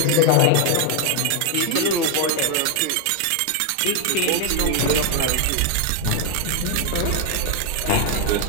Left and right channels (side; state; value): both; different; correlation 0.00